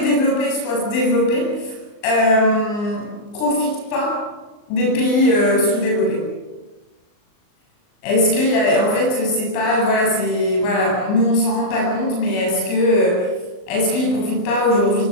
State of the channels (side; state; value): right; late; 39 ms